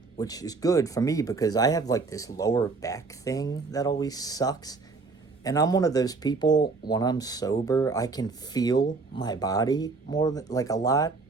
which is good for me because I have like this lower back thing that always sucks. And I'm one of those people, when I'm sober, I can feel my body more than, like a lot.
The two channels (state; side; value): quieter; left; 4.1 dB